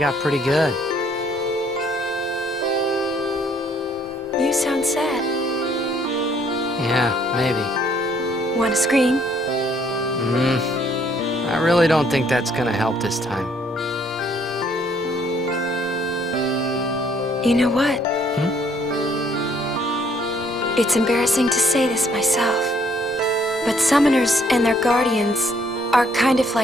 pretty good. You sound sad. Yeah, maybe. Want to scream? I really don't think that's gonna help this time. You know what? It's embarrassing to say this myself, but summoners and their guardians are kind of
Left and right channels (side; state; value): both; normal; correlation 0.65